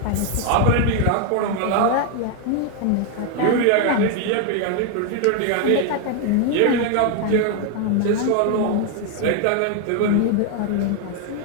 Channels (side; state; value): both; different; correlation 0.01